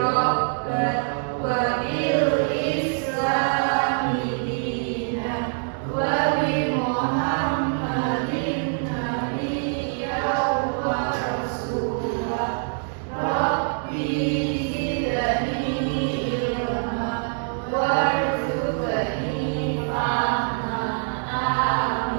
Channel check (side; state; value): left; silent; 59 dB below the other